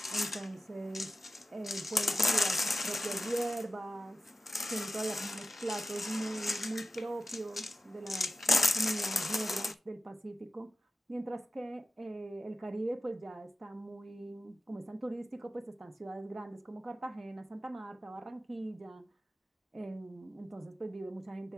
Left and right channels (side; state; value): both; normal; correlation 0.93